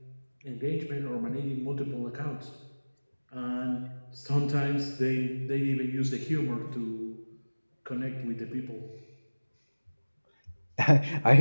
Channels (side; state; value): both; inverted; correlation -1.00